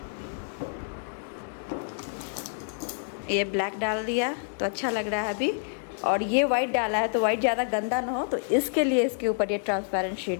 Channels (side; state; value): right; silent; digital silence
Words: ये ब्लैक डाल दिया तो अच्छा लग रहा है अभी, और ये वाइट डाला है तो वाइट ज़्यादा गंदा ना हो, तो इसके लिए इसके ऊपर ये ट्रांसपेरेंट